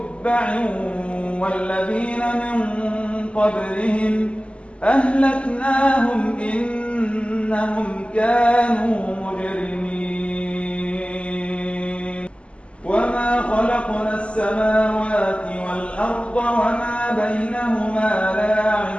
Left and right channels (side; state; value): right; late; 0.057 ms